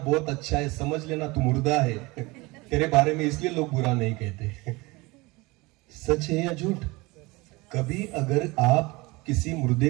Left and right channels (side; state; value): left; quieter; 23.4 dB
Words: अच्छा है, समझ लेना तू मुर्दा है तेरे बारे में, इसलिए लोग बुरा नहीं कहते। सच है या झूठ? कभी अगर आप किसी मुर्दे